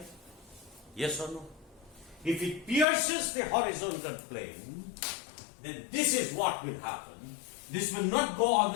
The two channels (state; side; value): drops out; right; at 2.9 s